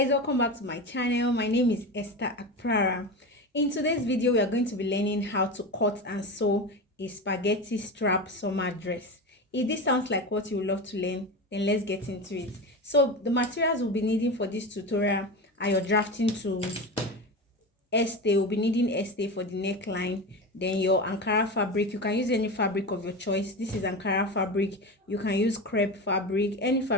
welcome back to my channel. My name is Esther Akprara. In today's video, we are going to be learning how to cut and sew a spaghetti strap summer dress. If this sounds like what you would love to learn, then let's get into it. So the materials we'll be needing for this tutorial are your drafting tools, estay. We'll be needing estay for the neckline, then your Ankara fabric. You can use any fabric of your choice. This is Ankara fabric. You can use crepe fabric. Any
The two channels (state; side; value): normal; both; correlation 0.24